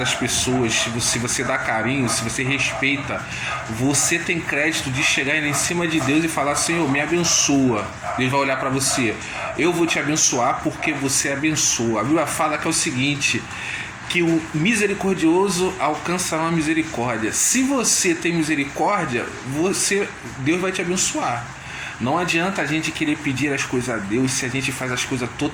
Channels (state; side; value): identical; both; correlation 1.00